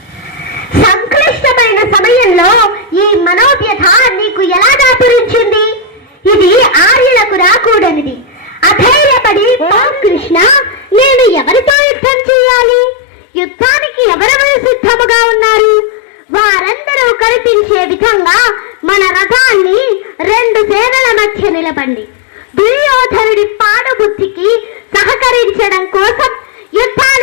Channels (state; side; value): drops out; right; at 11.8 s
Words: సంక్లిష్టమైన సమయంలో ఈ మనోవ్యథ నీకు ఎలా దాపురించింది? ఇది ఆర్యులకు రాకూడనిది. అధైర్యపడి కృష్ణ, నేను ఎవరితో యుద్ధం చేయాలి? యుద్ధానికి ఎవరెవరు సిద్ధముగా ఉన్నారు? వారందరూ కనిపించే విధంగా మన రథాన్ని రెండు సేనల మధ్య నిలబండి. దుర్యోధనుడి పాడుబుద్ధికి సహకరించడం కోసం